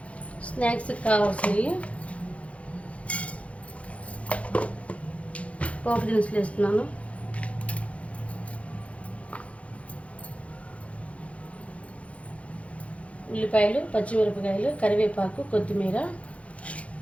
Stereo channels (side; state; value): right; late; 0.064 ms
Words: స్నాక్స్కి కావాల్సినవి పోపు దినుసులు వేస్తున్నాను. ఉల్లిపాయలు, పచ్చిమిరపకాయలు, కరివేపాకు, కొత్తిమీర,